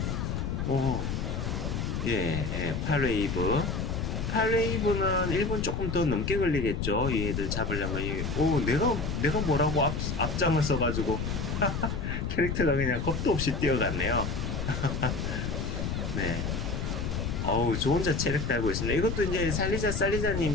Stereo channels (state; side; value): noise; left; rumble, 2 dB below the sound